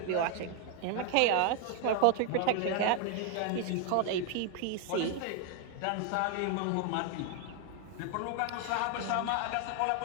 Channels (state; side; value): different; both; correlation 0.00